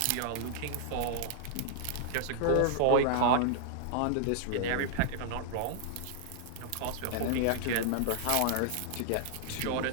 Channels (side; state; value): both; different; correlation -0.01